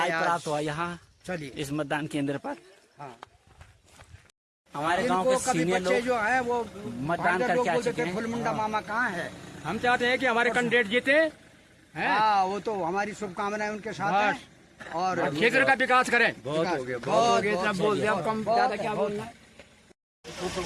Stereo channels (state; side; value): identical; both; correlation 1.00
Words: प्राप्त हुआ यहाँ। चलिए इस मतदान केंद्र पर। हाँ, हमारे गांव के सीनियर लोग जो है वो मतदान करके आ चुके हैं। फुलमुंडा मामा कहाँ है? हम चाहते हैं कि हमारे कैंडिडेट जीते हैं। हाँ, वो तो हमारी शुभकामनाएं उनके साथ है। और क्षेत्र का विकास करें। बहुत हो गया, बहुत इतना बोल दिया, अब कम ज्यादा क्या बोलना।